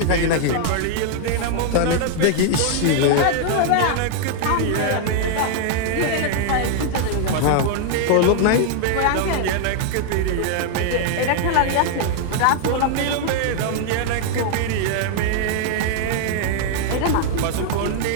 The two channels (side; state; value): both; different; correlation 0.00